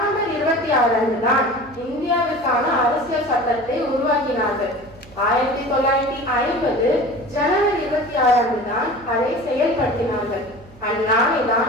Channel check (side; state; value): right; noise; hum, 23 dB below the sound